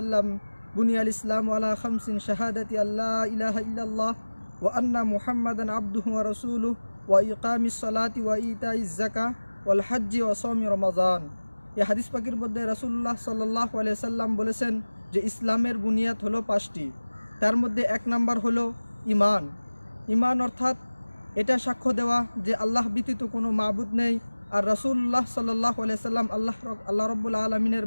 বুনিয়াল ইসলামু আলা খামসিন শাহাদাতি আল্লা ইলাহা ইল্লাল্লাহ ওয়া আন্না মুহাম্মাদান আবদুহু ওয়া রাসূলুহু ওয়া ইকামিস সালাতি ওয়া ইতাইজ যাকাহ ওয়াল হজ্জি ওয়া সাওমি রমাজান। এই হাদিস পাকের মধ্যে রাসূলুল্লাহ সাল্লাল্লাহু আলাইহি সাল্লাম বলেছেন যে ইসলামের বুনিয়াদ হলো 5টি। তার মধ্যে 1 নাম্বার হলো ঈমান। ঈমান অর্থাৎ এটা সাক্ষ্য দেওয়া যে আল্লাহ ব্যতীত কোনো মাবুদ নেই, আর রাসূলুল্লাহ সাল্লাল্লাহু আলাইহি সাল্লাম আল্লাহ রাব্বুল আলামিনের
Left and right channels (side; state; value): both; inverted; correlation -1.00